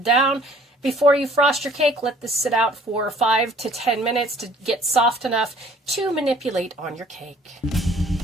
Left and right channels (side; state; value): both; normal; correlation 0.55